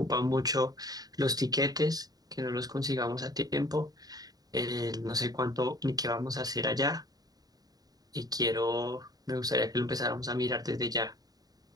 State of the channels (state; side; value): late; left; 0.18 ms